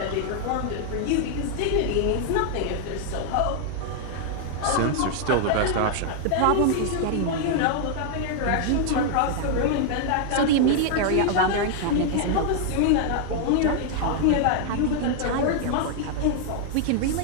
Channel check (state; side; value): different; both; correlation 0.00